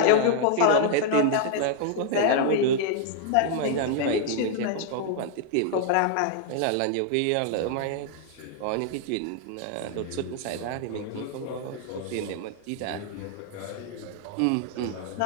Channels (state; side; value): different; both; correlation 0.00